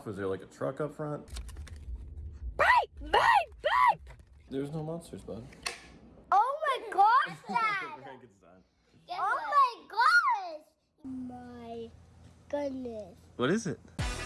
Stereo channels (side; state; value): both; identical; correlation 1.00